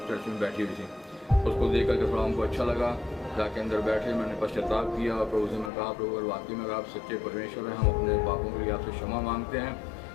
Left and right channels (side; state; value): right; drops out; at 5.7 s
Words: चर्च में बैठी हुई थी। उसको देख करके थोड़ा हमको अच्छा लगा, जाके अंदर बैठे, मैंने पश्चाताप किया और प्रभु से मैं कहा प्रभु अगर वाकई में अगर आप सच्चे परमेश्वर हैं, हम अपने पापों के लिए आपसे क्षमा मांगते हैं